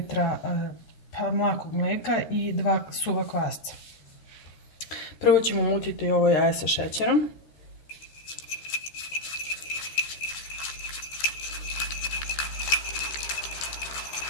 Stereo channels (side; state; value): right; late; 13 ms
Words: mlakog mlijeka i 2 suva kvasca. Prvo ćemo mutiti ovo jaje sa šećerom.